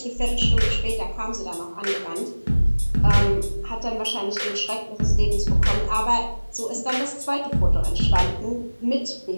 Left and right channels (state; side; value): inverted; both; correlation -1.00